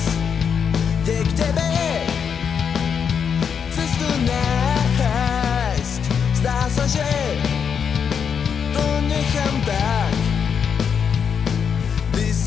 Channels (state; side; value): quieter; right; 7.0 dB